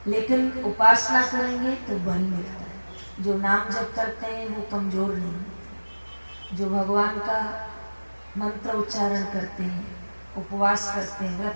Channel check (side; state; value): both; inverted; correlation -1.00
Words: लेकिन उपासना करेंगे तो बल मिलता है। जो नाम जप करते हैं वो कमजोर नहीं होते, जो भगवान का मंत्र उच्चारण करते हैं, उपवास करते हैं,